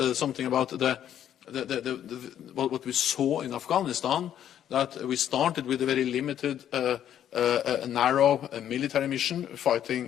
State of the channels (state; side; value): quieter; right; 10.4 dB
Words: something about what we saw in Afghanistan, that we started with a very limited, narrow military mission,